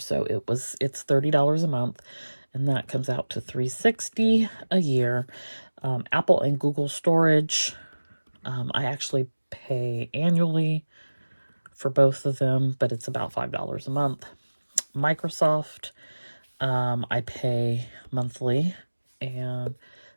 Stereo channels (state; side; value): inverted; both; correlation -1.00